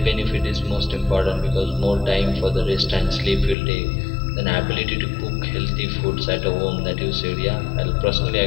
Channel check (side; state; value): right; drops out; at 3.6 s